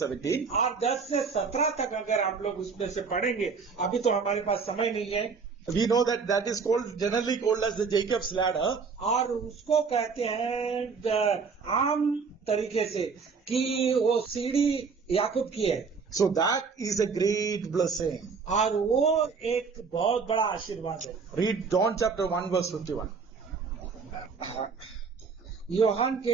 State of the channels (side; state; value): left; quieter; 5.2 dB